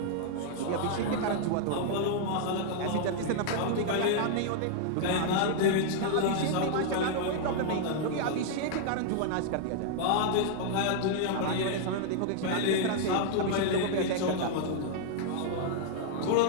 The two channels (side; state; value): both; different; correlation -0.01